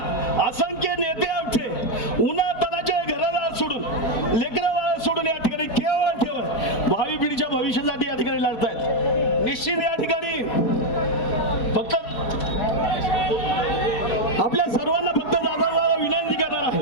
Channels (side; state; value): right; late; 4.6 ms